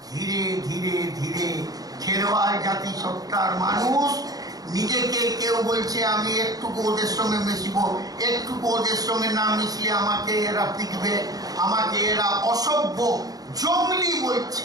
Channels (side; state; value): left; late; 0.18 ms